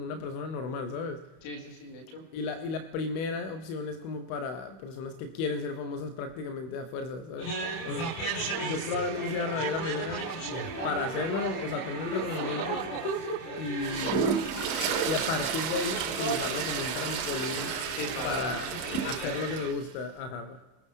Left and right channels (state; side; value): late; right; 31 ms